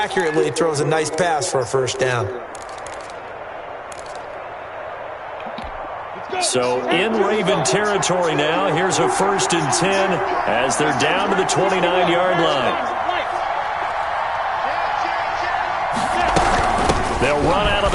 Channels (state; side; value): identical; both; correlation 1.00